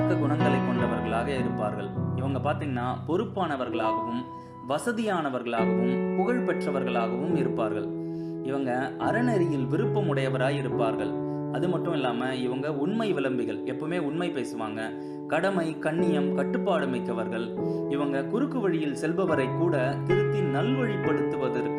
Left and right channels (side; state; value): both; identical; correlation 1.00